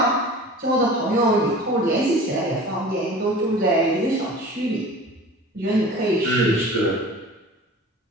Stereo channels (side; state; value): both; normal; correlation 0.41